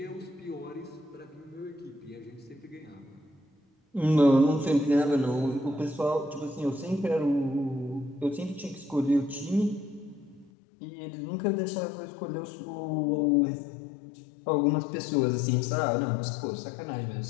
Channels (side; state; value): right; drops out; at 10.5 s